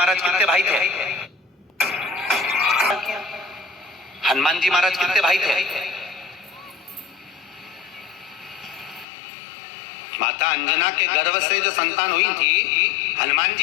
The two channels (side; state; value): right; drops out; at 9.1 s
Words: कितने भाई थे? हनुमान जी महाराज कितने भाई थे? माता अंजना के गर्भ से जो संतान हुई थी, हनुमान